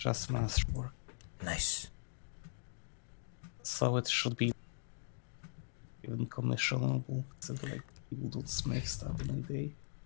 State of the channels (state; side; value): silent; right; digital silence